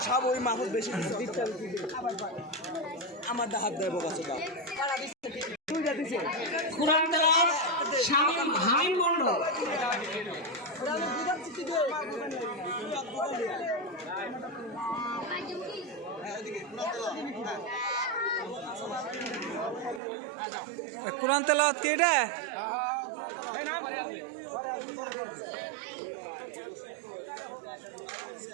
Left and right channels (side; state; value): left; drops out; at 20.0 s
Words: সব ওই মাহফুজ বেশি নিছে কুরআন তেলাওয়াত শামীম হামিম মণ্ডল। কোরআন তেলাওয়াত কি এটা?